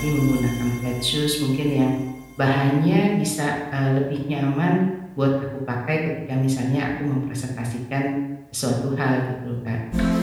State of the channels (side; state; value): both; identical; correlation 1.00